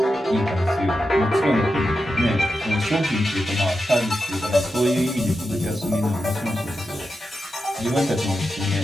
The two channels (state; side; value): normal; both; correlation 0.89